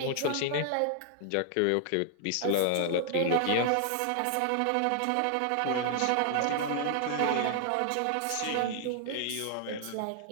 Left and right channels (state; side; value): different; both; correlation 0.00